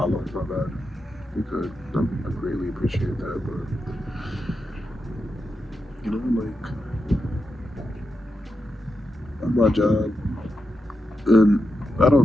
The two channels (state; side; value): normal; both; correlation 0.87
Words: my bad. If you could, I greatly appreciate that. But you know, like on my job, and I